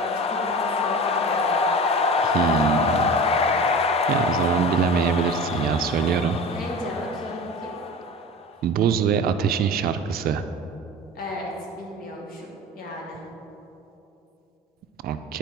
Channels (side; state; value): both; normal; correlation 0.34